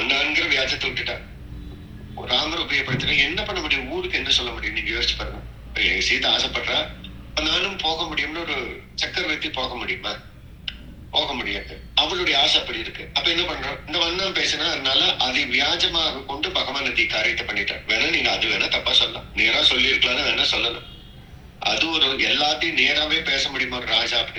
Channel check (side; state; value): both; identical; correlation 1.00